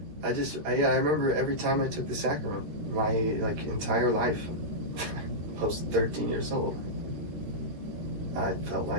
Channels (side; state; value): left; late; 13 ms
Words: remember every time I took the sacrament, my entire life, post 13 years old, I felt